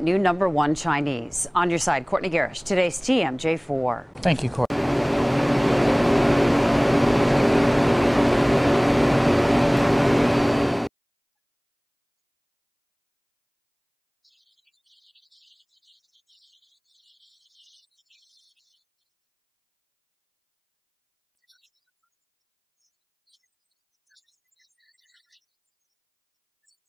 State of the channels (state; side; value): identical; both; correlation 1.00